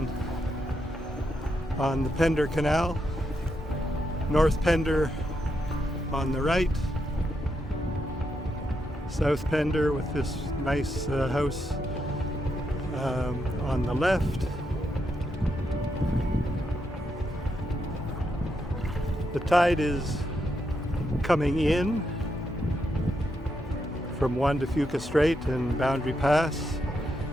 the Pender Canal. North Pender on the right, South Pender with this nice house on the left. The tide is coming in from One to Fuca Strait and Boundary Pass,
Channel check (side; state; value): both; normal; correlation 0.82